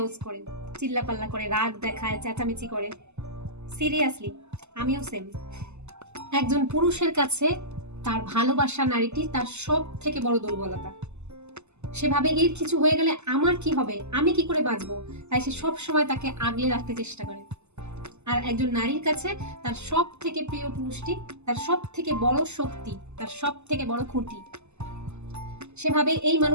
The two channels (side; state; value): left; late; 0.82 ms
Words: করে, চিল্লাপাল্লা করে, রাগ দেখায়, চেঁচামেচি করে। সিরিয়াসলি, আমিও সেম। একজন পুরুষের কাছে তার ভালোবাসা নারীটি তার সব থেকে বড় দুর্বলতা। সেভাবে এর কিছু হয়ে গেলে আমার কি হবে, আমি কি করে বাঁচবো, তাই সে সব সময় তাকে আগলে রাখতে চেষ্টা করে। আর একজন নারীর কাছে তার সব থেকে প্রিয় পুরুষটি তার সব থেকে বড় শক্তি, তার সব থেকে বড় খুঁটি। সেভাবে এই